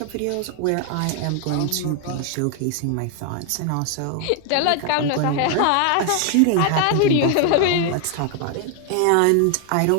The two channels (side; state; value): both; different; correlation 0.00